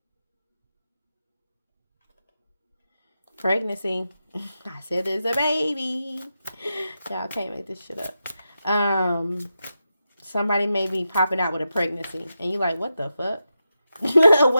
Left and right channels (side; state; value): both; inverted; correlation -0.88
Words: Pregnancy. I said there's a baby. Y'all can't make this shit up. Somebody may be popping out with a pregnancy. And you like, what the fuck?